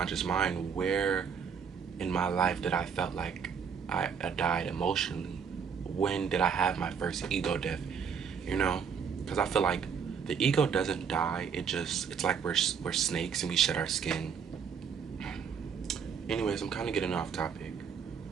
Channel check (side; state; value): left; quieter; 6.7 dB